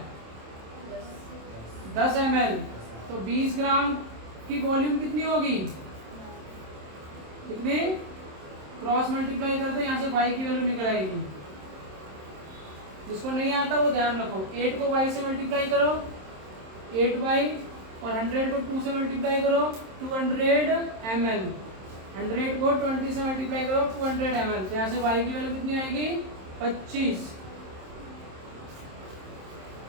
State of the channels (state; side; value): late; left; 27 ms